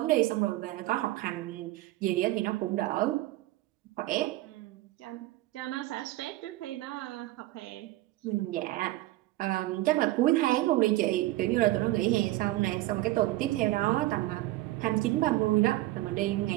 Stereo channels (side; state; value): left; quieter; 17.4 dB